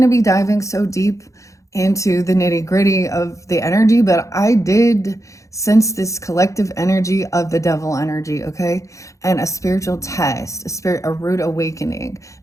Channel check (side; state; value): right; late; 0.15 ms